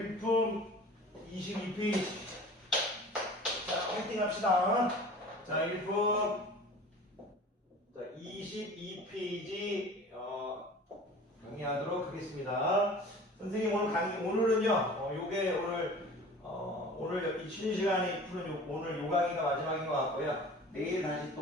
22페이지. 자, 화이팅 합시다. 자, 일품 22페이지 강의하도록 하겠습니다. 선생님 오늘은요, 요게 오늘 이 쉬는 시간에 푸는 오늘 요 강의가 마지막인 것 같고요. 내일 다시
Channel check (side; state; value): both; normal; correlation 0.42